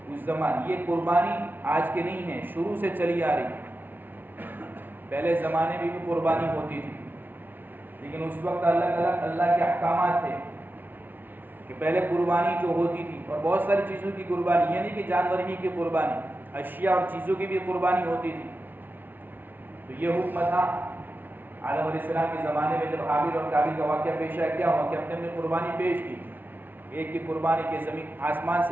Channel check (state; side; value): late; left; 0.089 ms